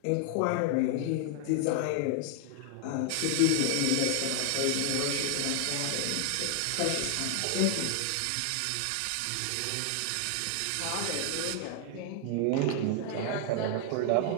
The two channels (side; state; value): both; different; correlation 0.00